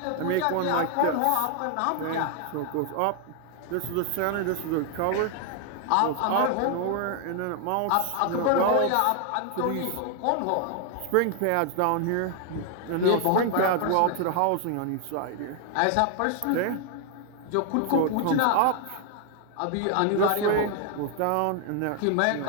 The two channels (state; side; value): different; both; correlation 0.00